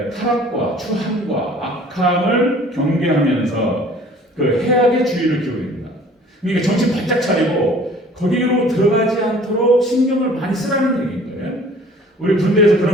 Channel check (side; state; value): both; normal; correlation 0.51